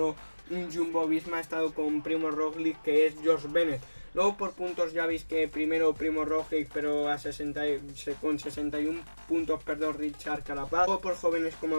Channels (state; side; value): inverted; both; correlation -1.00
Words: un Jumbo Visma ha estado con Primo Roglic, que es George Bennett. Luego por puntos ya veis que primero Primo Roglic, pero con 61 puntos, Richard Carapaz. Luego por jóvenes, como